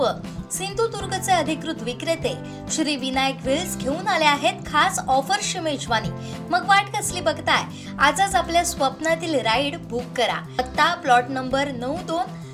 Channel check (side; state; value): both; identical; correlation 1.00